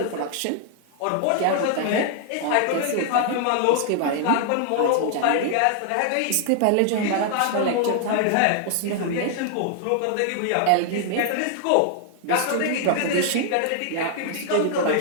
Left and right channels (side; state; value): both; different; correlation 0.00